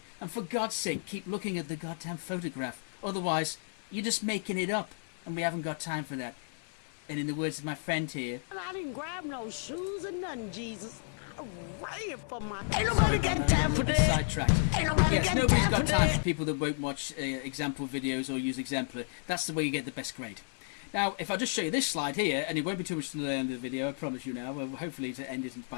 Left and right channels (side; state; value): right; silent; 56 dB below the other